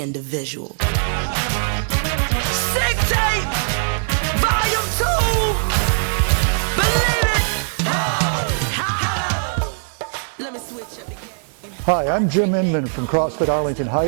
Sick tape, volume 2. Believe it. Let me switch up again. Hi, I'm Jim Inman from CrossFit Arlington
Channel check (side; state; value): left; silent; 66 dB below the other